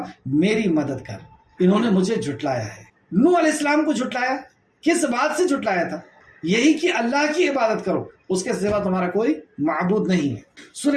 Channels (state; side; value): identical; both; correlation 1.00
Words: میری مدد کر، انہوں نے مجھے جھٹلایا ہے. نوح علیہ السلام کو جھٹلایا، کس بات سے جھٹلایا تھا؟ یہی کہ اللہ کی عبادت کرو، اس کے سوا تمہارا کوئی معبود نہیں ہے.